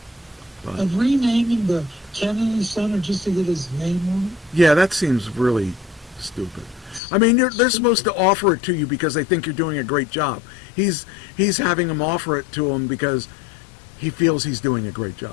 But, and renaming the Kennedy Center just to get his name on it? yeah, that seems really stupid. I mean, they're supposed to offer it to you because they think you're doing a great job. He's having them offer it to him because he feels he's doing a great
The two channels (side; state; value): right; drops out; at 7.0 s